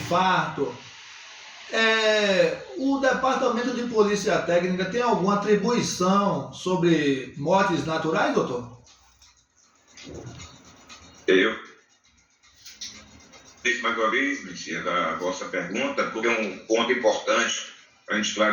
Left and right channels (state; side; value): identical; both; correlation 1.00